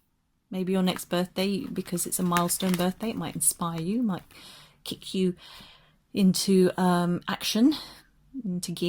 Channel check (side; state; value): both; identical; correlation 1.00